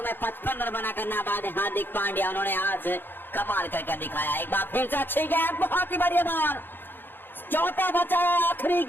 में 55 रन बनाकर नाबाद है हार्दिक पांड्या, उन्होंने आज कमाल कर दिखाया। एक बार फिर से अच्छी गेंद, बहुत ही बढ़िया बॉल, चौथा बचा आखिरी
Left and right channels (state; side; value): late; right; 0.097 ms